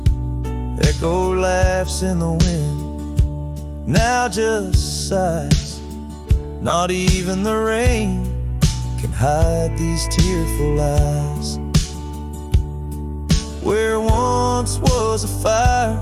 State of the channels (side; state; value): both; identical; correlation 1.00